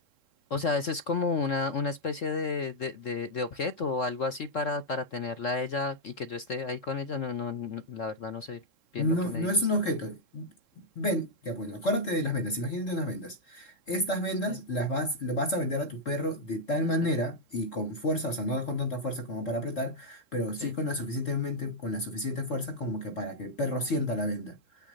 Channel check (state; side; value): late; right; 3.7 ms